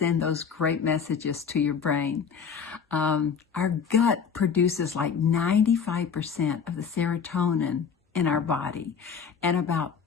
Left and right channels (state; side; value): quieter; right; 6.5 dB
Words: those great messages to your brain. Our gut produces like 95% of the serotonin in our body and about